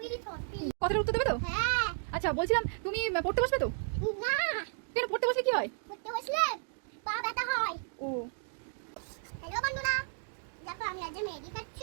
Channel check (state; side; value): silent; left; digital silence